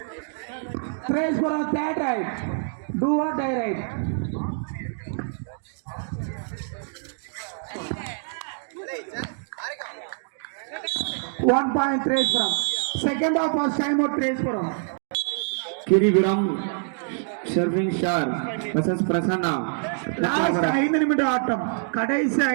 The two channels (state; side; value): silent; left; digital silence